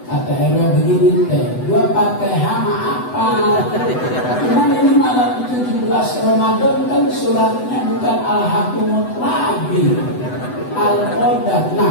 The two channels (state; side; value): late; right; 8.0 ms